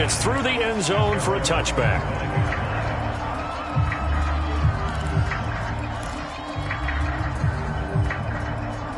through the end zone for a touchback.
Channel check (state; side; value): identical; both; correlation 1.00